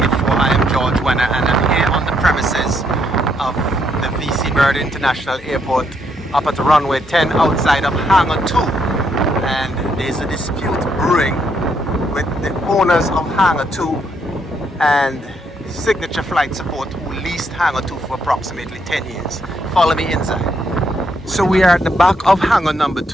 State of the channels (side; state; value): both; normal; correlation 0.74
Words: I am George Wenner and I'm here on the premises of the VC Bird International Airport up at Runway 10 outside of Hangar 2. And there's a dispute brewing with the owners of Hangar 2 and Signature Flight Support, who leased Hangar 2 for approximately 10 years. Follow me inside. So we are at the back of hangar number